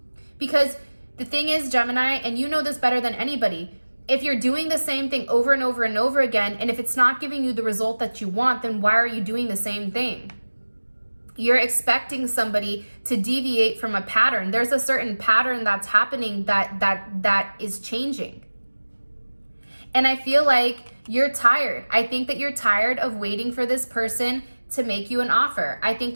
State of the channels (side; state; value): both; inverted; correlation -1.00